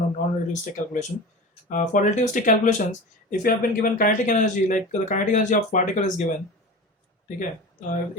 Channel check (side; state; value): both; normal; correlation 0.32